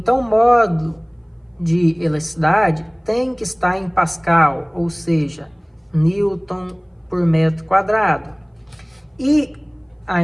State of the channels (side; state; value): both; identical; correlation 1.00